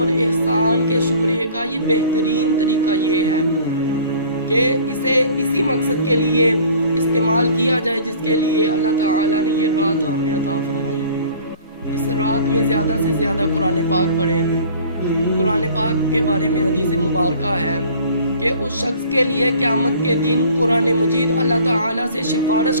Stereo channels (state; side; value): inverted; both; correlation -0.49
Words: احسان کے شکریہ کا یہ بہترین طریقہ یہ ہے کہ اسے اسی مقصد کے لیے استعمال کیا جائے جس کے لیے اللہ تعالیٰ نے یہ رات ہمیں عطا فرمائی۔ اس رات میں زیادہ سے زیادہ قرآن پاک پڑھیں۔ قرآن پاک کے بارے میں حدیث مبارکہ ہے کہ اس شخص کے لیے قیامت کے دن قرآن مجید اللہ تعالیٰ سے سفارش